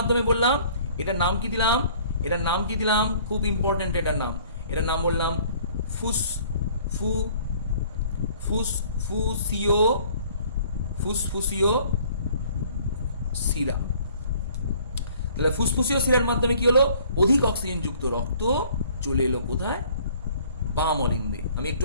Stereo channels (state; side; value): inverted; both; correlation -0.55